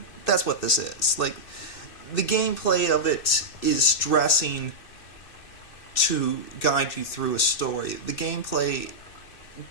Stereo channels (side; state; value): right; late; 2.6 ms